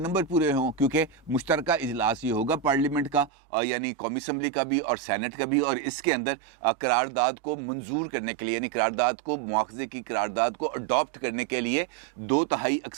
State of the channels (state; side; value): drops out; left; at 3.3 s